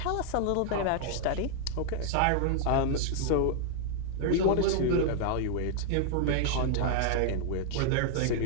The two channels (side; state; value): both; different; correlation 0.00